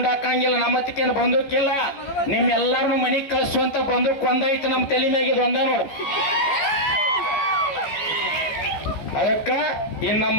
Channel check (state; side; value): late; right; 14 ms